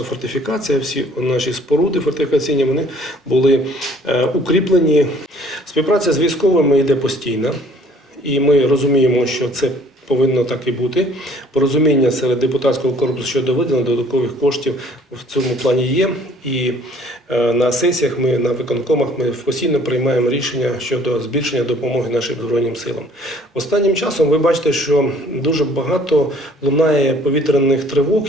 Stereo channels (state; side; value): normal; both; correlation 0.56